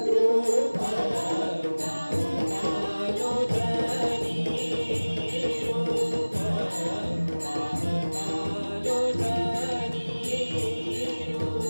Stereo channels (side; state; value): both; inverted; correlation -1.00